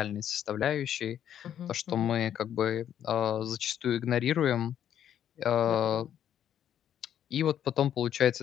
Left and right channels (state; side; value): quieter; right; 10.0 dB